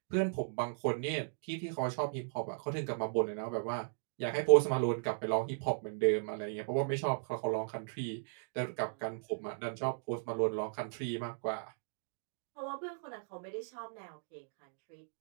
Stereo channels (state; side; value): silent; left; digital silence